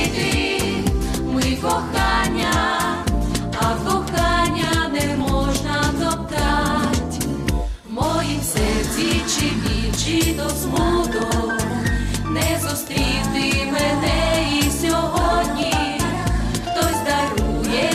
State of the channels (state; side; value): identical; both; correlation 1.00